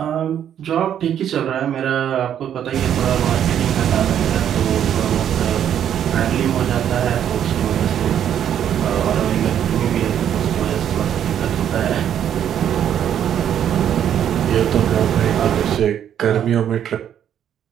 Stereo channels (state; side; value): quieter; left; 9.7 dB